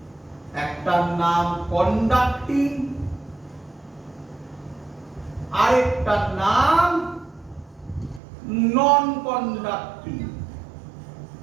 একটার নাম কন্ডাক্টিং, আরেকটার নাম নন কন্ডাক্টিং।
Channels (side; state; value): left; drops out; at 8.2 s